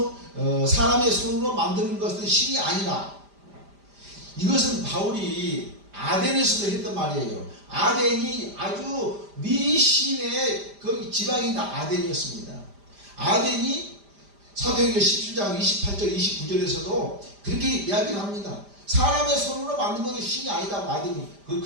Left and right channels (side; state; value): left; late; 5.0 ms